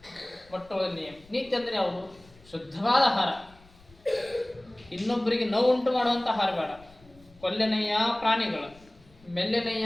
ಮೊಟ್ಟ ಮೊದಲ ನಿಯಮ ನೀತಿ ಅಂದ್ರೆ ಯಾವುದು? ಶುದ್ಧವಾದ ಆಹಾರ, ಇನ್ನೊಬ್ಬರಿಗೆ ನೋವು ಉಂಟು ಮಾಡುವಂಥ ಆಹಾರ ಬೇಡ. ಕೊಲ್ಲೆನಯ್ಯ ಪ್ರಾಣಿಗಳ,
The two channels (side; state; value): left; noise; rumble, 26 dB below the sound